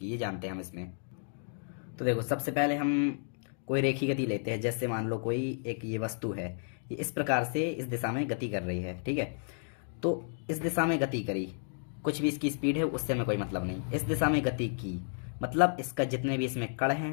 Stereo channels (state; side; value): silent; right; digital silence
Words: ये जानते हैं हम इसमें। तो देखो, सबसे पहले हम कोई रेखी गति लेते हैं। जैसे मान लो कोई एक ये वस्तु है, ये इस प्रकार से इस दिशा में गति कर रही है, ठीक है। तो इस दिशा में गति करी, कुछ भी इसकी स्पीड है उससे हमें कोई मतलब नहीं। इस दिशा में गति की मतलब इसका जितने भी इसमें कण